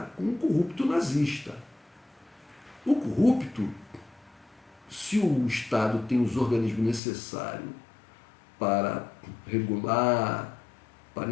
com um corrupto nazista. O corrupto, se o Estado tem os organismos necessários para regular, para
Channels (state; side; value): drops out; right; at 7.0 s